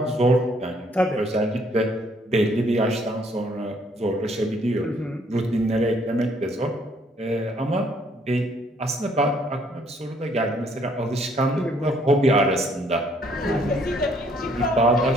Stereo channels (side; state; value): both; normal; correlation 0.65